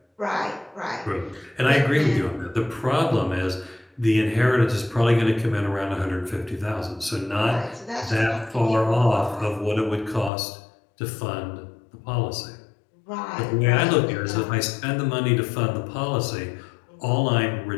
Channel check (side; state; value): right; drops out; at 10.3 s